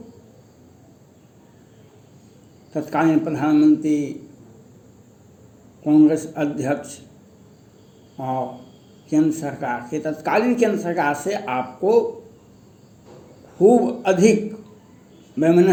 तत्कालीन प्रधानमंत्री, कांग्रेस अध्यक्ष और तत्कालीन केंद्र सरकार से आपको खूब अधिक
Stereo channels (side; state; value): both; identical; correlation 1.00